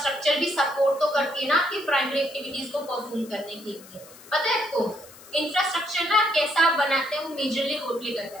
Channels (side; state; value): left; noise; hiss, 21 dB below the sound